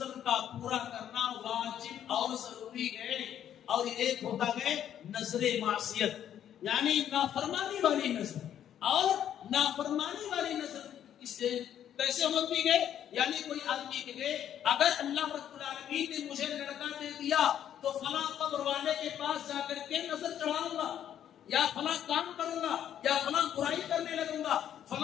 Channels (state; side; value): quieter; right; 10.2 dB